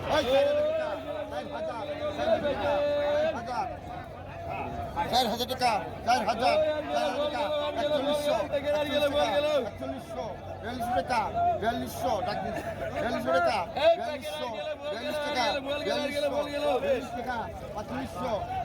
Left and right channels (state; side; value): identical; both; correlation 1.00